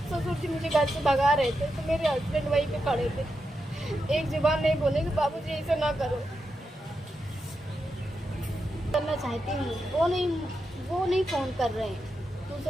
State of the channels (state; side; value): normal; both; correlation 0.87